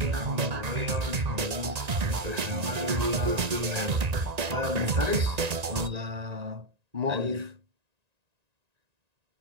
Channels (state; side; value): late; left; 1.9 ms